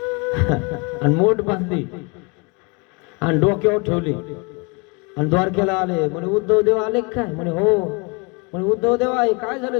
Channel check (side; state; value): right; quieter; 29.8 dB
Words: आणि मोठ बांधली आणि डोक्यावर ठेवली आणि द्वारकेला आले. म्हणे उद्धव देव आले काय? म्हणे हो. म्हणे उद्धव देवा हे काय झालं?